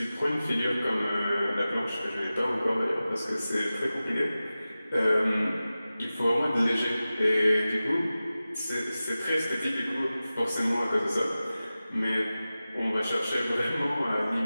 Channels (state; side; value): inverted; both; correlation -0.96